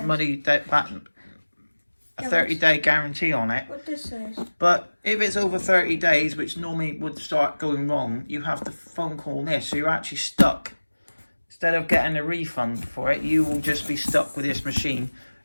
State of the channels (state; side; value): inverted; both; correlation -1.00